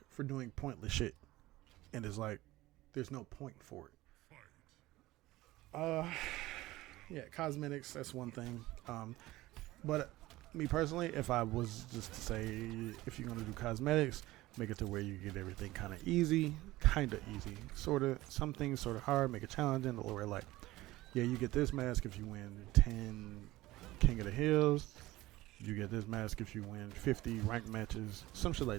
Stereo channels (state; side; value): quieter; left; 17.9 dB